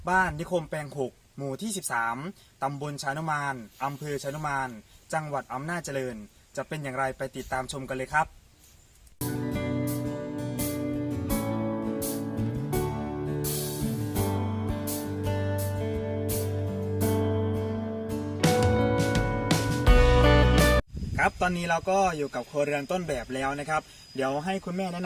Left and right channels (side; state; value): both; identical; correlation 1.00